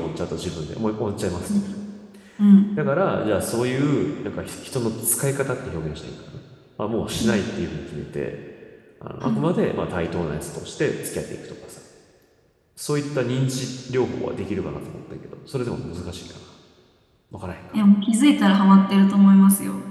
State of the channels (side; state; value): both; identical; correlation 1.00